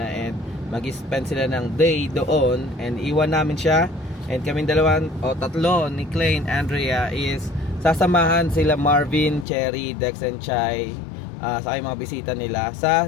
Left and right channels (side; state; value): right; drops out; at 9.5 s